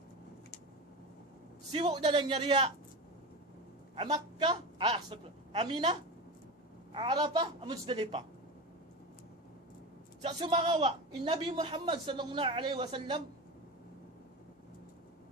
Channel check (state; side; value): normal; both; correlation 0.24